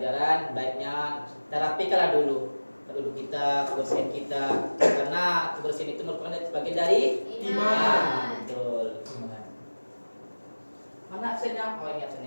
baiknya kita rapikanlah dulu duduk kita, kebersihan kita, karena kebersihan itu merupakan bagian dari Iman. Betul. Mana absennya? Oh ini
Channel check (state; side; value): inverted; both; correlation -1.00